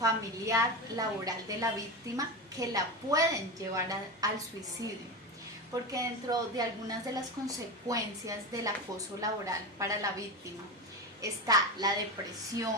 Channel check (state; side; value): normal; both; correlation 0.20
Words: laboral de la víctima, que la pueden llevar al suicidio. Porque dentro de algunas de las consecuencias del acoso laboral para la víctima está la